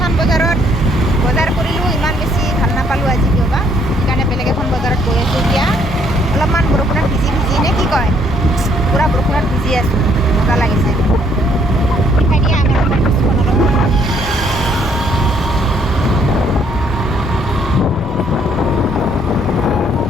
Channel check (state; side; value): normal; both; correlation 0.66